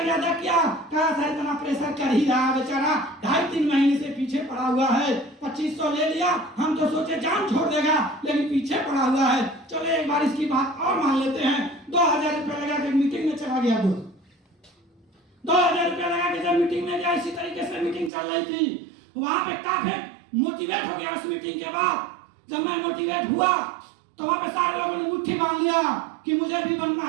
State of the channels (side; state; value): left; drops out; at 18.1 s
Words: किया, कहा सर इतना प्रेशर कर ही रहा है बेचारा, 2.5-3 महीने से पीछे पड़ा हुआ है, 2500 ले लिया, हम तो सोचे जान छोड़ देगा, लेकिन पीछे पड़ा हुआ है। चलो एक बार इसकी बात और मान लेते हैं। 2000 रुपया लगा के मीटिंग में चला गया। 2000 रुपया लगा के जब मीटिंग में गया, इसी तरीके से मीटिंग चल रही थी, वहां पे काफी मोटिवेट हो गया। उस मीटिंग के बाद जब मैं मोटिवेट हुआ तो वहां पे सारे लोगों ने मुट्ठी बांध लिया कि मुझे भी बनना